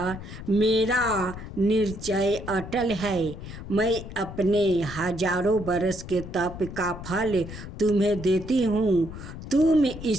मेरा निश्चय अटल है। मैं अपने हजारों बरस के तप का फल तुम्हें देती हूँ, तुम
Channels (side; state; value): left; noise; rumble, 11 dB below the sound